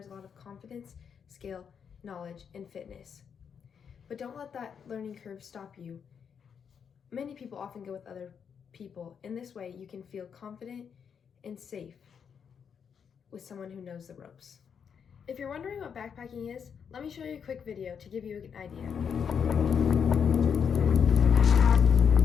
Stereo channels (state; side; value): quieter; right; 7.1 dB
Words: a lot of confidence, skill, knowledge, and fitness. But don't let that learning curve stop you. Many people often go with other people. In this way, you can feel confident and safe with someone who knows the ropes. If you're wondering what backpacking is, let me show you a quick video to give you an idea.